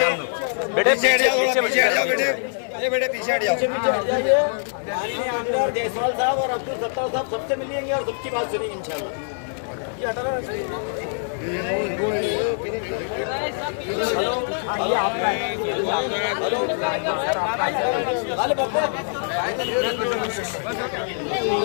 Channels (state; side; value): silent; right; digital silence